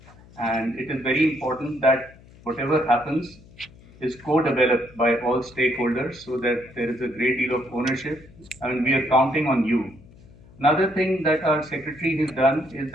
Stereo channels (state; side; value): noise; left; hum, 24 dB below the sound